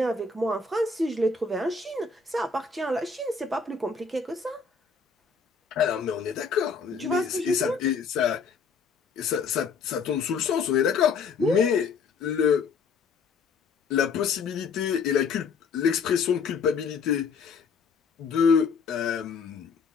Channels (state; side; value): quieter; right; 5.2 dB